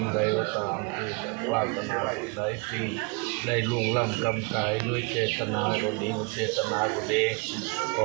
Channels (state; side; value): quieter; left; 30.9 dB